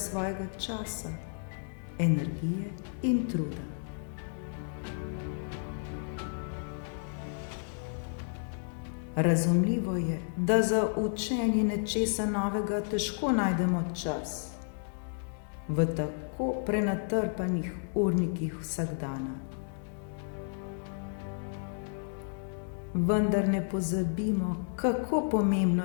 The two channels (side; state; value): right; silent; digital silence